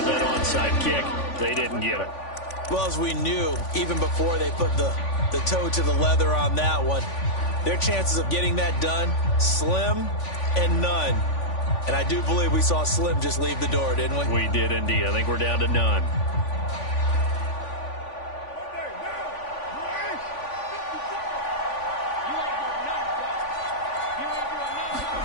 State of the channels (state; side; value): late; right; 3.5 ms